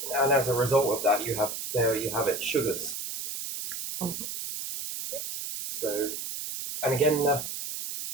And as a result of that, you have it, sugars. So, and again,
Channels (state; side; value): noise; right; hiss, 6 dB below the sound